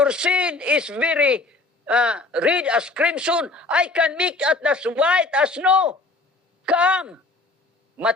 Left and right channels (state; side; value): quieter; right; 3.3 dB